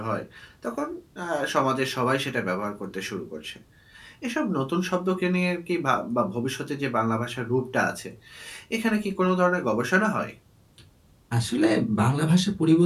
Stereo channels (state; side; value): identical; both; correlation 1.00